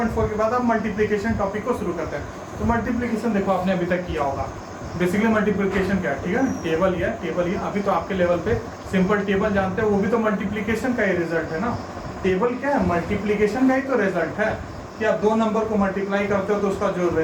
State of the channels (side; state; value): both; identical; correlation 1.00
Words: के बाद हम मल्टीप्लिकेशन टॉपिक को शुरू करते हैं। तो मल्टीप्लिकेशन देखो आपने अभी तक किया होगा। बेसिकली मल्टीप्लिकेशन क्या है, ठीक है ना, टेबल ही अभी तो आपके लेवल पे सिंपल टेबल जानते हैं, वो भी तो मल्टीप्लिकेशन का ही रिजल्ट है ना। टेबल क्या है, मल्टीप्लिकेशन का ही तो रिजल्ट है कि आप दो नंबर को मल्टीप्लाई करते हो तो उसका जो